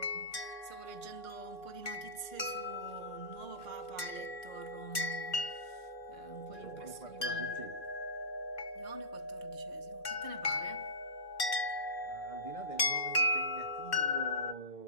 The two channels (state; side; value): late; right; 2.1 ms